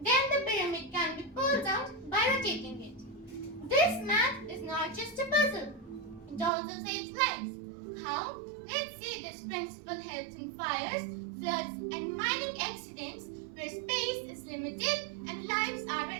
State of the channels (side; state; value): left; drops out; at 6.5 s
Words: Then the pyramid can be pulled out by rotating it. This math is not just a puzzle. It also saves lives. How? Let's see this principle helps in fires, floods, and mining accidents where space is limited and lives are